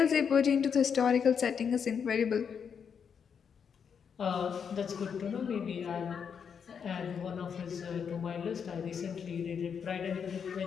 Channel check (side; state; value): right; quieter; 7.0 dB